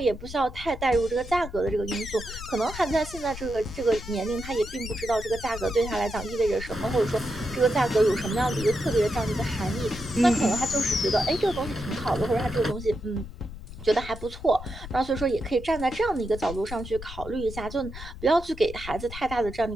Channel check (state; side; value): noise; left; rumble, 12 dB below the sound